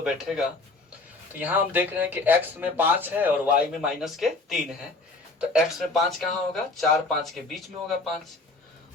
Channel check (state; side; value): quieter; right; 3.3 dB